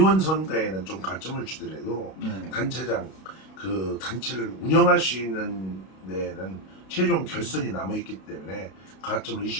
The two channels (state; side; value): late; right; 32 ms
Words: 선거에는 좀 가점을 주더라도 네. 단체장 그 단체를 운영할 수 있는 데는 최종 결선이 남아 있기 때문에 가점을